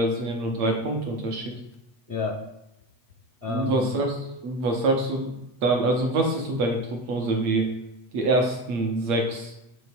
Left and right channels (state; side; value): late; left; 8.2 ms